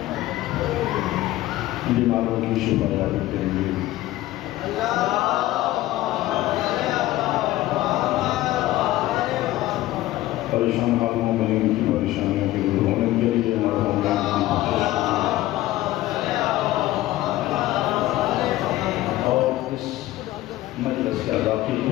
بیماروں کی شفا یابی کے لیے پریشان حالوں میں ان کی پریشانیوں کے دور ہونے کے لیے مرحوم اور اس مجلس کے اضافی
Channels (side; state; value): right; quieter; 16.0 dB